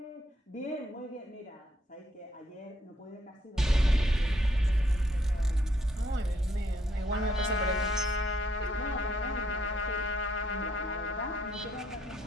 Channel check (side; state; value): both; normal; correlation 0.71